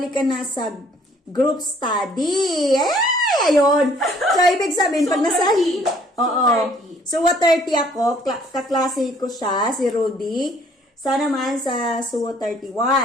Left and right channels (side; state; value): both; normal; correlation 0.60